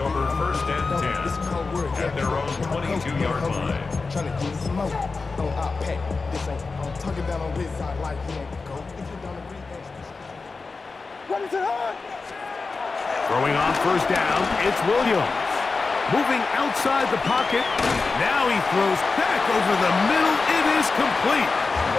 1st and 10 at their own 22-yard line. Throwing on 1st down, it's Williams. Moving outside the pocket. Now he throws back over the middle. It is complete.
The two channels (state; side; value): quieter; right; 4.2 dB